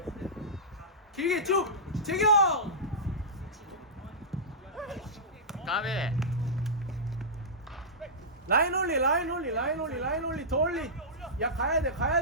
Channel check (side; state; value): both; normal; correlation -0.15